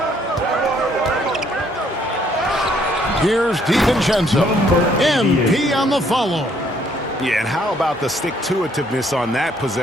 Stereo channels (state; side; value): normal; both; correlation 0.66